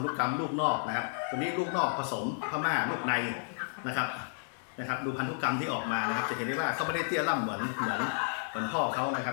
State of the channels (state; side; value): silent; right; digital silence